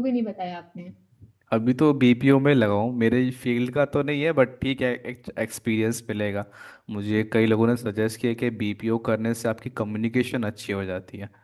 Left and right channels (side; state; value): both; identical; correlation 1.00